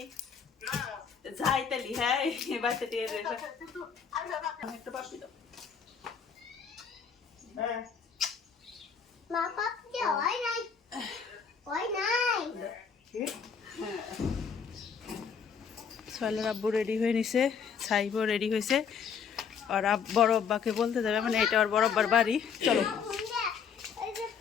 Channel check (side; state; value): right; quieter; 6.6 dB